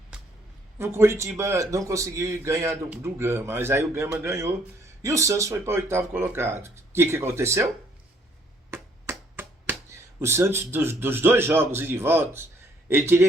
o Curitiba não conseguiu ganhar do Gama. Mas aí o Gama ganhou e o Santos foi para o 8º colocado. O que aconteceu? O Santos, dos 2 jogos e de volta, ele teria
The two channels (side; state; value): both; normal; correlation 0.65